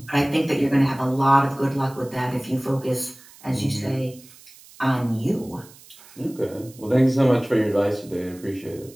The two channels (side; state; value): right; noise; hiss, 23 dB below the sound